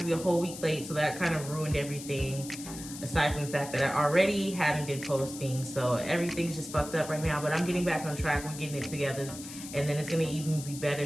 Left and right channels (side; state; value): left; noise; hiss, 12 dB below the sound